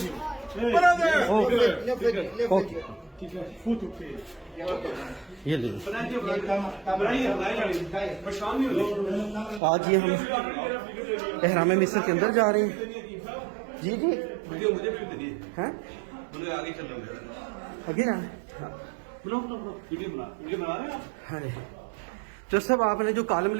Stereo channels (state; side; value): drops out; left; at 9.6 s